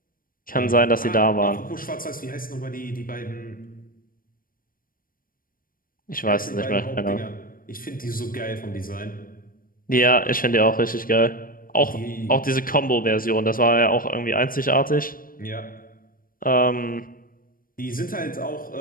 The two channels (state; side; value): late; right; 0.41 ms